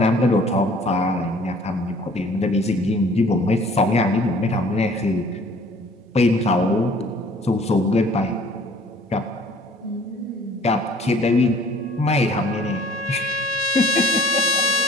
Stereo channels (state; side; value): normal; both; correlation 0.54